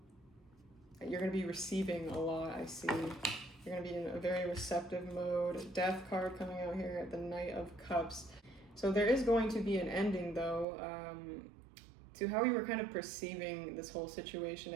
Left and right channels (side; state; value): left; drops out; at 10.7 s